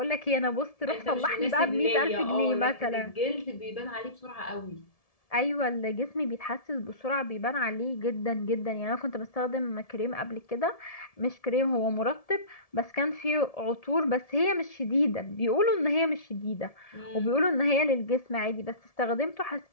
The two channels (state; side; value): late; right; 1.7 ms